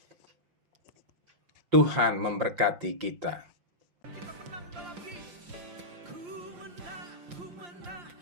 Tuhan memberkati kita. Kita menang dalam Yesus. Ku menang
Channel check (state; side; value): late; left; 5.7 ms